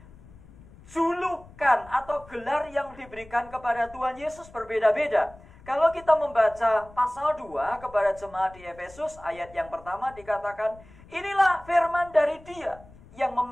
julukan atau gelar yang diberikan kepada Tuhan Yesus berbeda-beda. Kalau kita membaca pasal 2 kepada jemaat di Efesus, ayat yang pertama dikatakan, inilah firman dari Dia yang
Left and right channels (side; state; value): left; noise; rumble, 22 dB below the sound